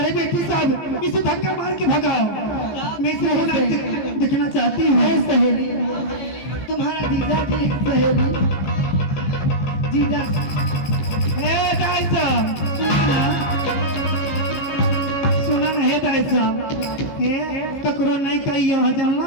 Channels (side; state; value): right; late; 14 ms